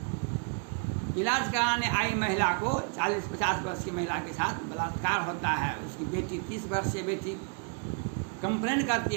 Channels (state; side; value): quieter; left; 39.2 dB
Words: इलाज कराने आई महिला को 40-50 वर्ष की महिला के साथ बलात्कार होता है। उसकी बेटी 30 वर्षीय बेटी कंप्लेन करती